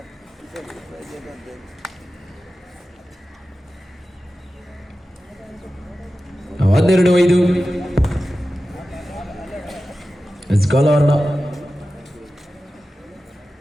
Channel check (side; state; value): both; normal; correlation 0.94